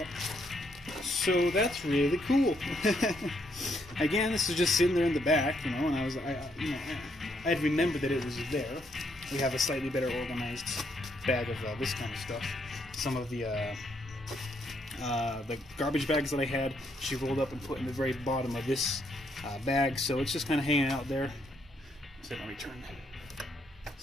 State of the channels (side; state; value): both; normal; correlation 0.74